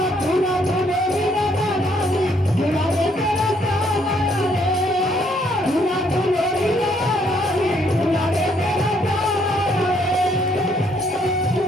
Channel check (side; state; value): both; normal; correlation 0.69